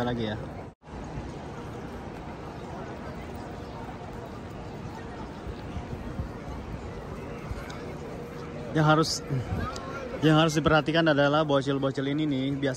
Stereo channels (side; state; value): both; identical; correlation 1.00